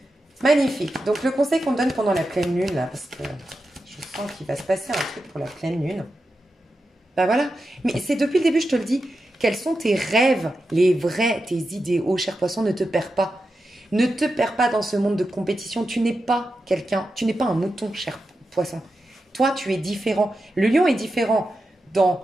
Magnifique. Donc le conseil qu'on donne pendant la pleine lune, là, parce que je sens qu'il va se passer un truc pour la pleine lune. Ben voilà. Mais c'est depuis le début, je te le dis. Quels sont tes rêves, les vrais, tes idéaux, cher poisson, ne te perds pas. Ne te perds pas dans ce monde de compétition. Tu n'es pas quelqu'un, tu n'es pas un mouton, cher poisson. Toi, tu es différent. Le lion est différent dans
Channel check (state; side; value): normal; both; correlation 0.89